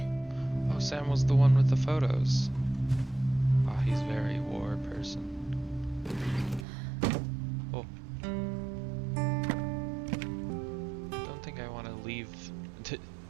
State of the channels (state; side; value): drops out; left; at 6.7 s